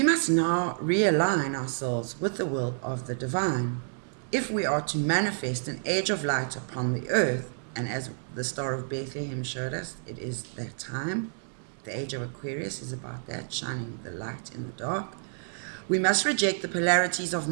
must now realign ourselves with the will of the divine if we are to manifest an age of light upon the earth. And as the Star of Bethlehem showed us, it is that time. The age of Aquarius is about that, shining the light in the dark. We must reject the polarities of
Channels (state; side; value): silent; left; 58 dB below the other